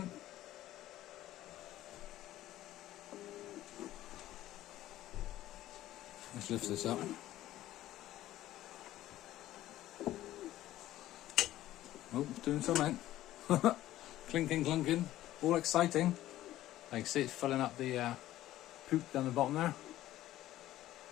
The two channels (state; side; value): quieter; right; 14.4 dB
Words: Let's lift this up. Oh, it's doing something. Clinking, clunking, all exciting. I can see it's filling up the poop down the bottom there.